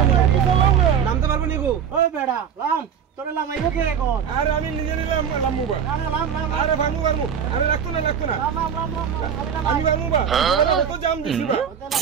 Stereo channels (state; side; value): quieter; left; 7.9 dB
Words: না নামতে পারবো নি গো ওই বেড়া লাম তোরে লামাইবো কে এখন আরে আমি নিজে নিলাম লামু বা আরে ভামু ভামু আরে রাখতো না আমি ভামু বা তো জাম দিছি বা